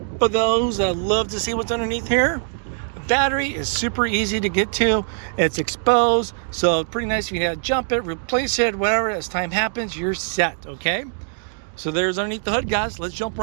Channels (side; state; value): left; silent; digital silence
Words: for those that love to see what's underneath here. The battery is super easy to get to. It's exposed, so pretty nice. If you have to jump it, replace it, whatever, as time happens, you're set, okay? So there's underneath the hood, guys. Let's jump